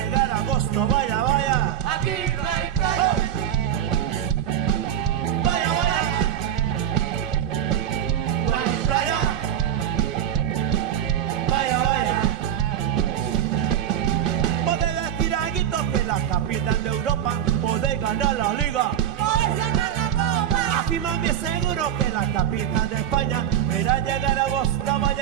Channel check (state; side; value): quieter; left; 10.0 dB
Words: agosto, vaya, vaya, Aquí no hay playa. vaya, vaya, no hay playa, vaya, vaya. Podés decir a Guitos que la capital de Europa, podés ganar la liga. Podés ganar la copa. Aquí más bien seguro que la capital de España, pero al llegar agosto,